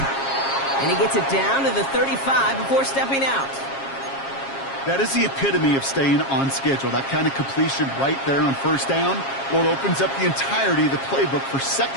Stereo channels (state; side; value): late; right; 7.4 ms